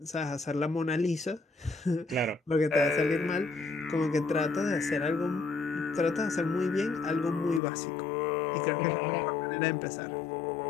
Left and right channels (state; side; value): drops out; right; at 7.6 s